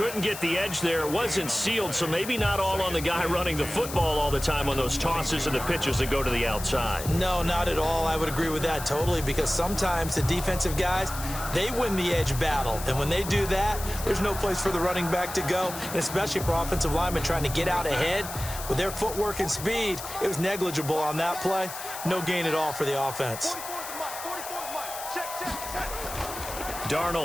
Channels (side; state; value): left; noise; hiss, 10 dB below the sound